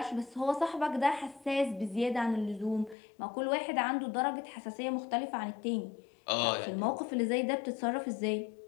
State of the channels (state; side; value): drops out; right; at 3.0 s